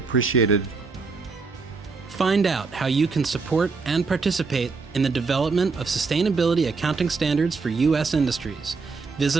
Find out how you can support and participate in the development of sustainability accounting standards for U.S. industries.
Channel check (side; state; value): left; quieter; 4.5 dB